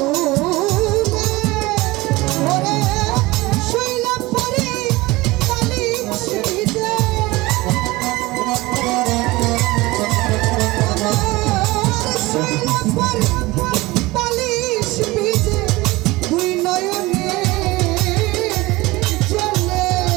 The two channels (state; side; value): quieter; left; 20.8 dB